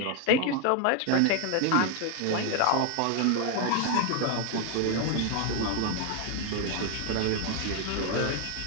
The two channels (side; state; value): both; different; correlation 0.01